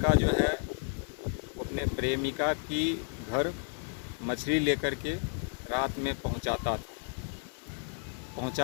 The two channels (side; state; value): right; silent; 56 dB below the other